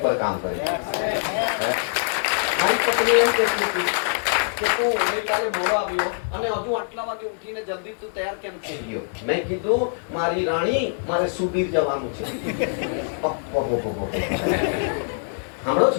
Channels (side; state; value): right; silent; digital silence